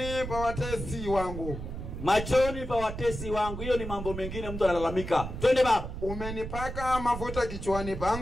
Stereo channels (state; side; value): noise; right; rumble, 7 dB below the sound